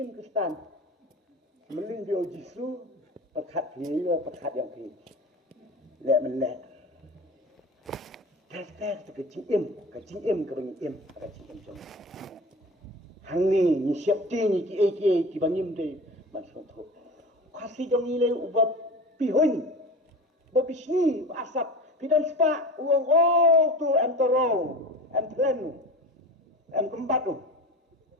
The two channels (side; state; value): both; normal; correlation 0.33